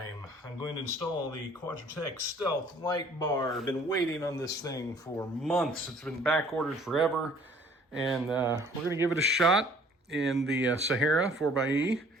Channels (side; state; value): both; normal; correlation 0.55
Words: I'm going to install the Quadratec Stealth light bar. I've been waiting on this thing for months. It's been back ordered forever, and we're gonna give it a shot in the Sahara 4xe,